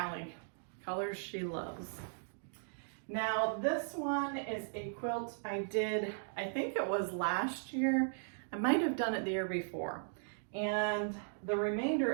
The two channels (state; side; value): silent; left; digital silence